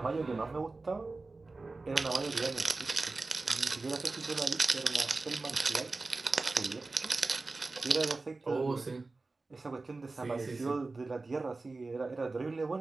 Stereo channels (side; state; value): left; quieter; 3.5 dB